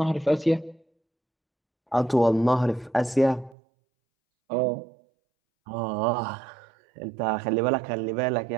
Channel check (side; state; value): left; drops out; at 3.6 s